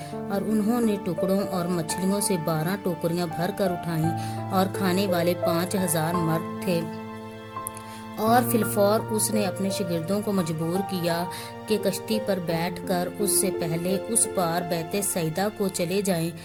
اور انہوں نے ٹکڑوں اور مچھلیوں سے 12 ٹوکریاں بھر کر اٹھائیں، اور کھانے والے 5000 مرد تھے۔ اور فی الفور اس نے اپنے شاگردوں کو مجبور کیا کہ کشتی پر بیٹھ کر اس سے پہلے اس پار بیت سیدہ کو چلے جائیں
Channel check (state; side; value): identical; both; correlation 1.00